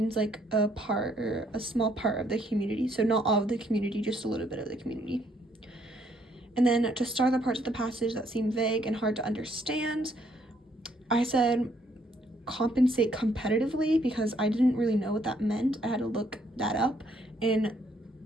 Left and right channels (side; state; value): both; normal; correlation 0.69